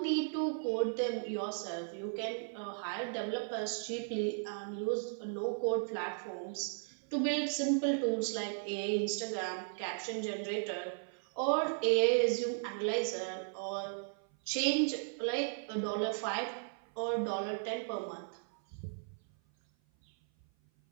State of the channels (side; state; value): left; silent; 54 dB below the other